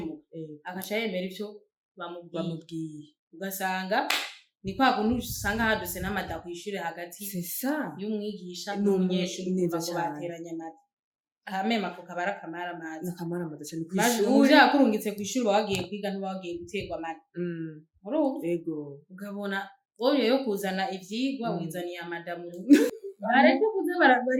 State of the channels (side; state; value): both; identical; correlation 1.00